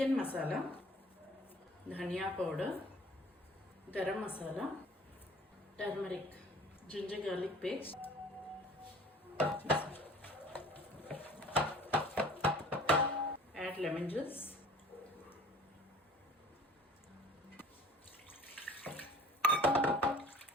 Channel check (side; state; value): both; normal; correlation 0.49